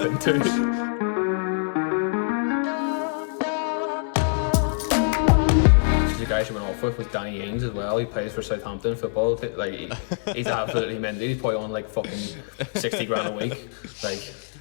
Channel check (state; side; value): silent; right; digital silence